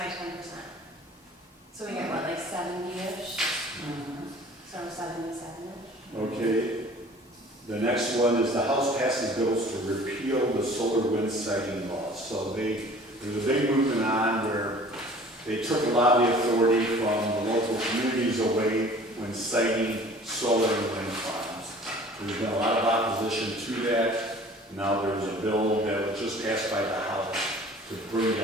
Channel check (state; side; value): normal; both; correlation 0.48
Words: 10%. So we get what, like 70-ish? So 77-ish? Okay. The next one is the House passes bills to repeal the solar wind siting laws. So there's a big movement on where they took a lot of the authority from the local communities away when siting solar and wind farms. There's been a lot of opposition to that. Now there's a bill that was just passed by the House to bring